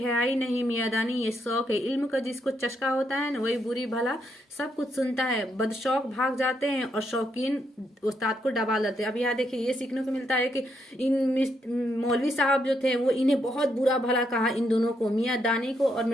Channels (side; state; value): both; normal; correlation 0.78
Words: नहीं मियादानी ये शौक है। इल्म का जिसको चस्का होता है ना वही बुरी भला सब कुछ सुनता है। बदशौक भाग जाते हैं और शौकीन उस्ताद को दबा लेते हैं। अब यहाँ देखिए ये सीखने को मिलता है कि इन मौलवी साहब जो थे वो इन्हें बहुत बुरा भला कहा, इन दोनों को, मियां दानी को और